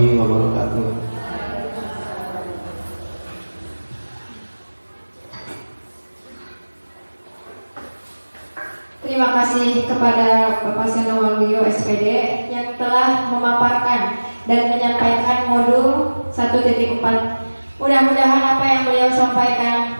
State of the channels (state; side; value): inverted; both; correlation -1.00